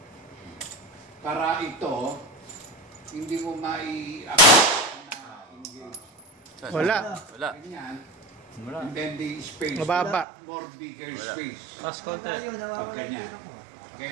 Para ito, hindi mo mai-accept na engage. Wala. Wala. Ganyan. Wala. And then the space. Mababa. More bigger space. Last contact. Pag ganyan. Okay?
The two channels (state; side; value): drops out; left; at 10.2 s